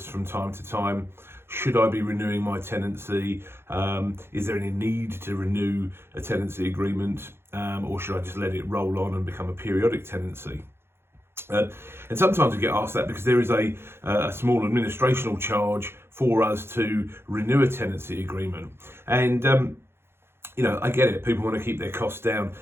from time to time, should I be renewing my tenancy? Is there any need to renew a tenancy agreement? Or should I just let it roll on and become a periodic tenancy? And sometimes we get asked that because there is a small administrational charge for us to renew a tenancy agreement. And I get it. People want to keep their costs down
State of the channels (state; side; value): late; left; 0.12 ms